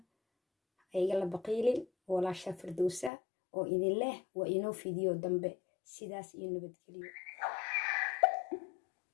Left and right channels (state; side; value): drops out; right; at 3.1 s